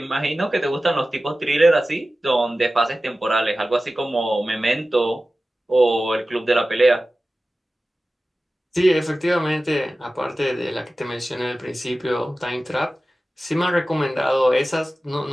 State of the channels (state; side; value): normal; both; correlation 0.95